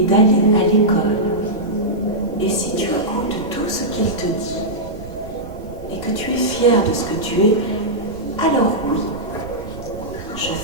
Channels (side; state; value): right; noise; rumble, 17 dB below the sound